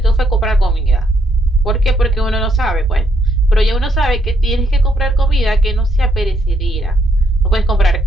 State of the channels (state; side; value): normal; both; correlation 0.74